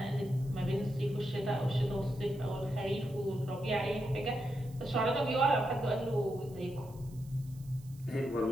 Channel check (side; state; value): right; noise; hiss, 25 dB below the sound